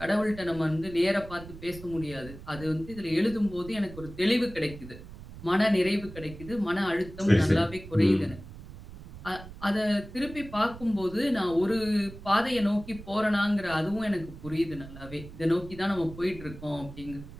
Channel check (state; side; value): noise; right; rumble, 15 dB below the sound